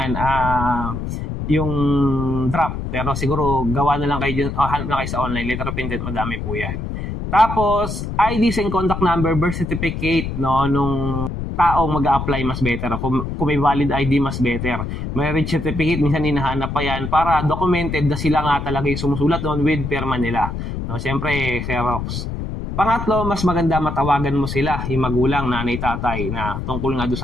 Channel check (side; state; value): left; noise; rumble, 5 dB below the sound